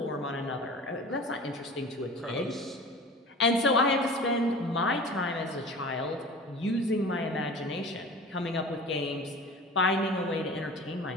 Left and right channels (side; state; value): both; normal; correlation 0.38